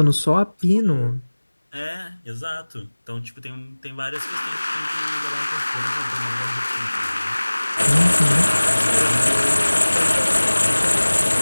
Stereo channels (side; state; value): both; inverted; correlation -1.00